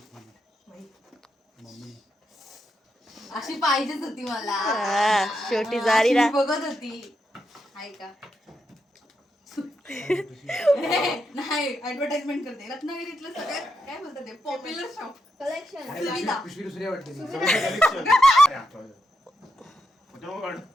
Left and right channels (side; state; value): both; normal; correlation 0.84